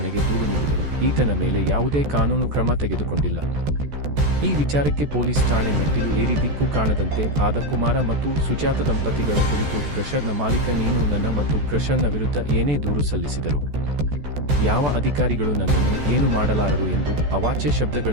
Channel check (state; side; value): late; left; 14 ms